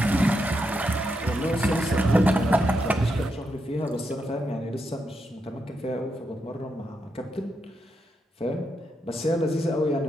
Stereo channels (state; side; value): normal; both; correlation 0.83